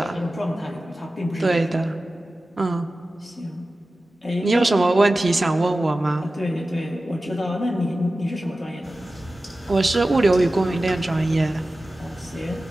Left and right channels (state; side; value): normal; both; correlation 0.95